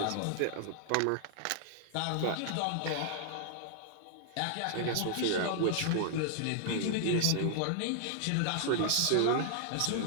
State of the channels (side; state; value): both; different; correlation 0.00